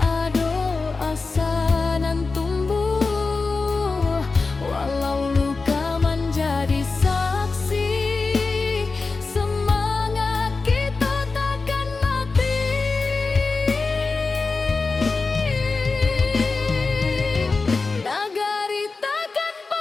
asa nan tumbuh,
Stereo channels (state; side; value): quieter; right; 4.0 dB